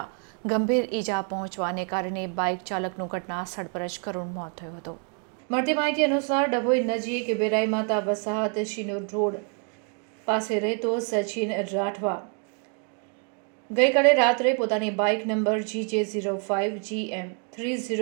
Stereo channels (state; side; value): quieter; left; 37.7 dB